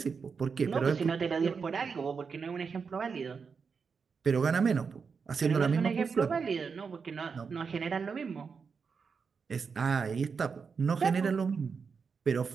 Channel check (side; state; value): left; quieter; 5.6 dB